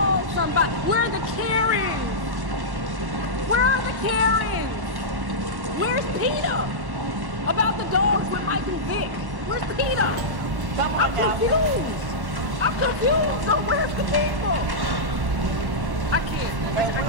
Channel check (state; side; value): late; left; 1.1 ms